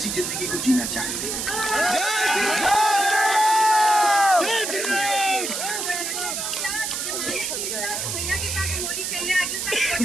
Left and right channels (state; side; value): noise; right; hiss, 3 dB below the sound